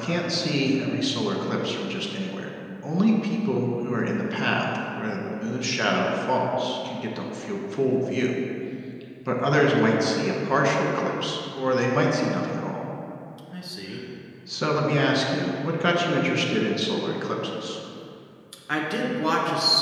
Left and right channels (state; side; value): identical; both; correlation 1.00